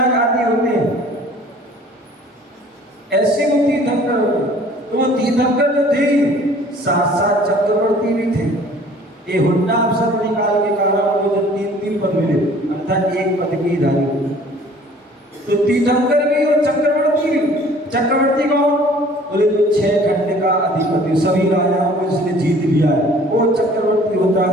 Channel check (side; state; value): both; normal; correlation 0.52